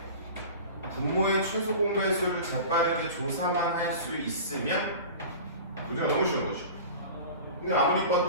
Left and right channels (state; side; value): inverted; both; correlation -0.36